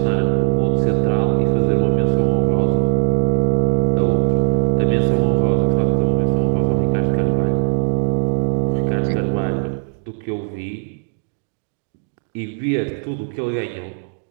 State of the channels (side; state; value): left; silent; digital silence